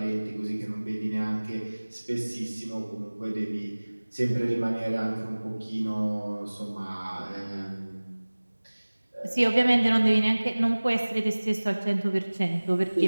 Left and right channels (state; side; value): inverted; both; correlation -1.00